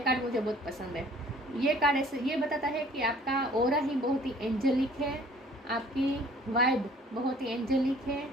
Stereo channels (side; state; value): both; normal; correlation 0.54